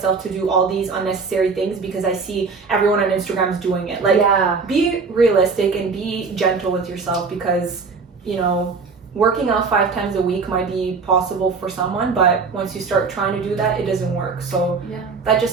to do all these unnecessary things because I see everyone on Instagram is doing it. Like, be realistic and be gentle with yourself, because, you know, working out 5 times a week might be possible for someone, but once you start trying to do that, it doesn't work. So that's just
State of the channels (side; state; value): left; quieter; 4.8 dB